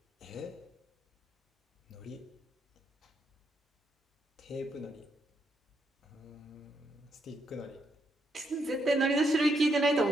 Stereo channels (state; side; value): normal; both; correlation 0.78